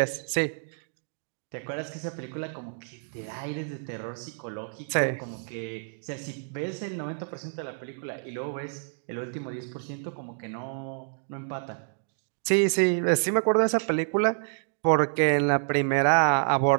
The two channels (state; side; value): silent; left; digital silence